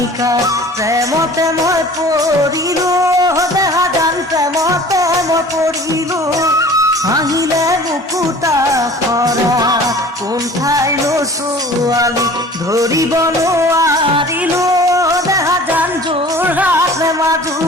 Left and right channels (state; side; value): normal; both; correlation 0.45